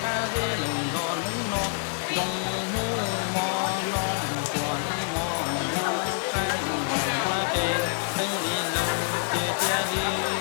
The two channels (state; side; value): silent; right; 60 dB below the other